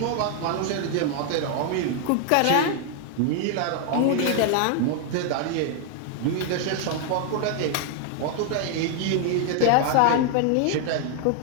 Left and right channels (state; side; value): different; both; correlation 0.00